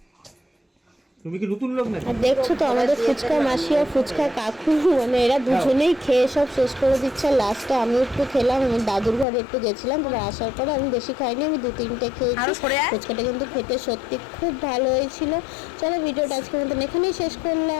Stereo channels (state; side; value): drops out; right; at 9.2 s